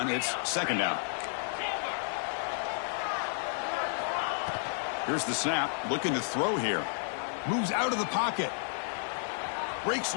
it's 2nd down. Here's the snap, looking to throw here. Moves out of the pocket. Breaks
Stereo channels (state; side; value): silent; right; digital silence